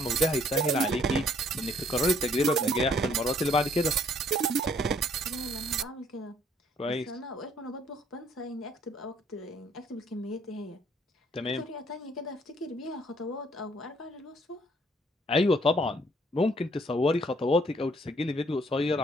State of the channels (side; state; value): both; normal; correlation 0.64